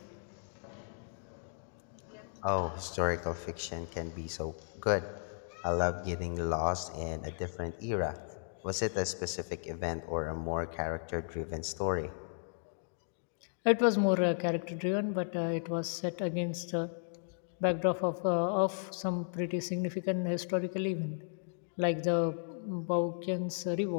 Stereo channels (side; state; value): right; silent; digital silence